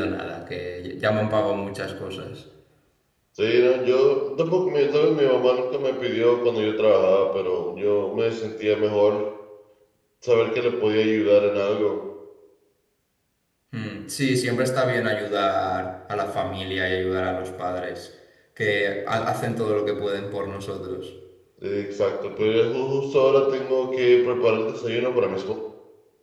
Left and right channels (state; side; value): identical; both; correlation 1.00